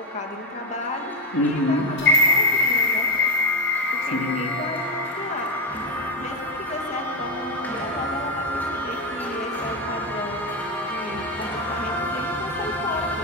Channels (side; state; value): both; normal; correlation 0.09